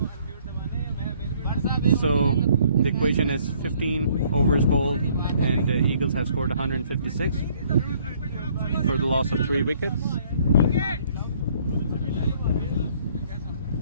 So the equation is 15 overs bowled, and the Eagles have scored 156 for the loss of 3 wickets.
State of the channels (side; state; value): both; inverted; correlation -0.62